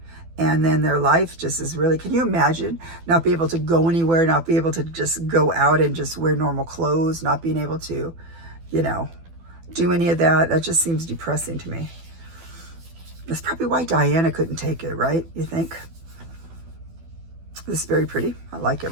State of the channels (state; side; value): late; left; 12 ms